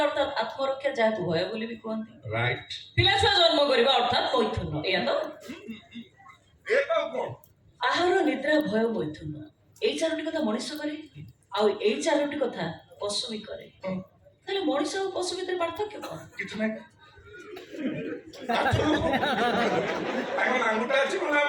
ଅର୍ଥାତ୍ ଆତ୍ମରକ୍ଷା, ଯାହାକୁ ଭୟ ବୋଲି ବି କୁହନ୍ତି। ରାଇଟ୍। ପିଲାଛୁଆ ଜନ୍ମ କରିବା ଅର୍ଥାତ୍ ମୈଥୁନ, ଏଇଆ ତ? ଆହାର, ନିଦ୍ରା, ଭୟ, ମୈଥୁନ, ଏଇ ଚାରୋଟି କଥା ମଣିଷ କରେ, ଆଉ ଏଇ ଚାରୋଟି କଥା ପଶୁ ବି କରେ। ତାହେଲେ ମଣିଷ ଆଉ ପଶୁ ଭିତରେ ପାର୍ଥକ୍ୟ କଣ? କିଛି ନାହିଁ। ନାଙ୍ଗୁଟା ଅଛି,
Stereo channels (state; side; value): identical; both; correlation 1.00